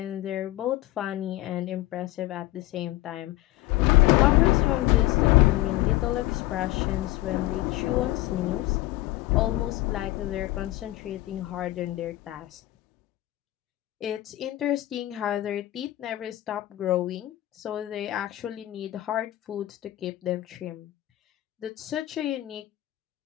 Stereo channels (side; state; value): right; quieter; 17.0 dB